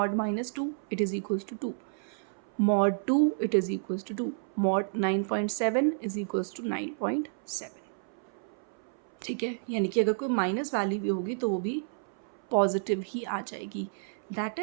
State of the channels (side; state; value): left; silent; 57 dB below the other